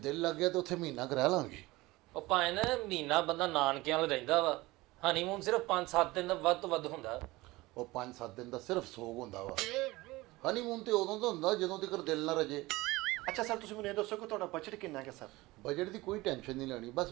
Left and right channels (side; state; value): left; quieter; 20.4 dB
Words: ਲੱਗ ਗਿਆ ਤਾਂ ਉੱਥੇ ਮਹੀਨਾ ਕਰਾ ਲਾਂਗੇ। ਉਹ ਭਾਵੇਂ ਨਾ ਮਹੀਨਾ ਬੰਦਾ ਨਾਨਕਿਆਂ ਨਾਲ ਰਹਿੰਦਾ ਵਾ, ਹਨੀਮੂਨ ਸਿਰਫ 5-7 ਦਿਨ ਦਾ ਵੱਧ ਤੋਂ ਵੱਧ ਹੁੰਦਾ। ਉਹ 5-7 ਦਿਨ ਦਾ ਸਿਰਫ ਸੋਗ ਹੁੰਦਾ ਵਾ। ਹਨੀਮੂਨ ਤੇ ਉਦੋਂ ਦਾ ਹੁੰਦਾ ਜਦੋਂ ਤੱਕ ਦਿਲ ਨਾ ਰਜੇ। ਅੱਛਾ ਸਰ, ਤੁਸੀਂ ਮੈਨੂੰ ਇਹ ਦੱਸੋ ਕਿ ਤੁਹਾਡਾ ਬਜਟ ਕਿੰਨਾ ਹੈ ਸਰ? ਬਜਟ ਦੀ ਕੋਈ ਟੈਨਸ਼ਨ ਨਹੀਂ ਲੈਣੀ, ਬਸ